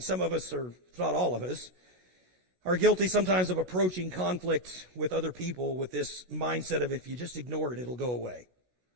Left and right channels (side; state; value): left; late; 17 ms